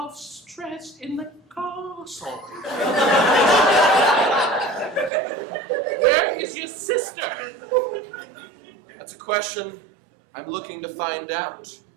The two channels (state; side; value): drops out; left; at 5.1 s